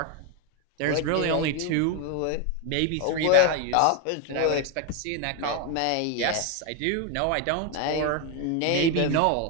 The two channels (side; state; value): both; different; correlation 0.01